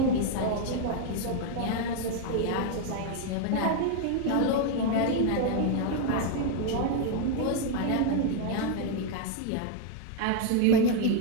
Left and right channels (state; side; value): different; both; correlation 0.01